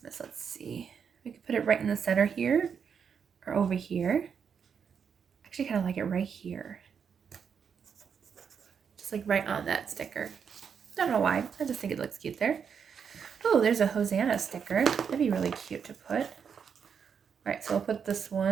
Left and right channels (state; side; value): quieter; left; 6.9 dB